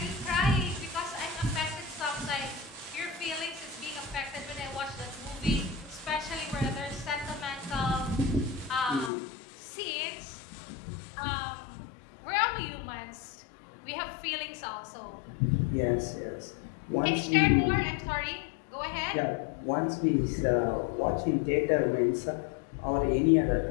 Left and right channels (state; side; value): drops out; right; at 9.1 s